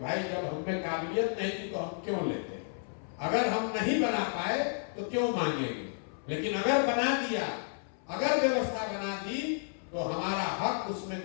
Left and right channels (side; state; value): right; silent; 56 dB below the other